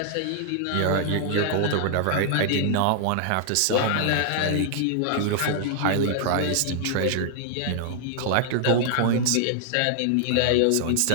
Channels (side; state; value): both; different; correlation -0.01